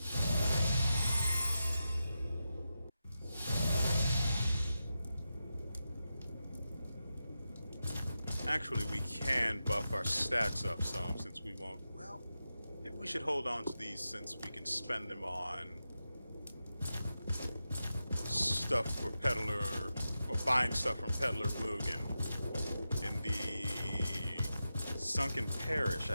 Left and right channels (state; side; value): inverted; both; correlation -0.90